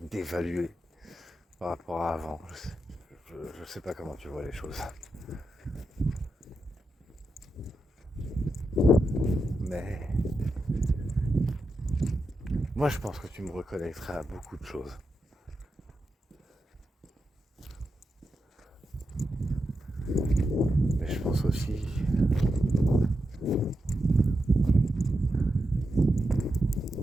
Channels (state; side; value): normal; both; correlation 0.87